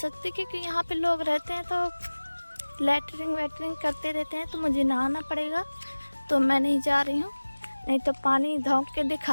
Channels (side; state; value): both; inverted; correlation -1.00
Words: क्योंकि यहाँ पे लोग रहते हैं तो लैटरिन वैटरिन करते रहते हैं, तो मुझे नहाना पड़ेगा। तो मैं नहीं जा रही हूँ, नहीं तो पानी धोंक के